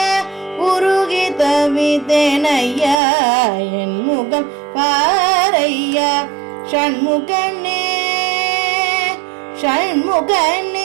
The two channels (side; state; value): left; drops out; at 3.0 s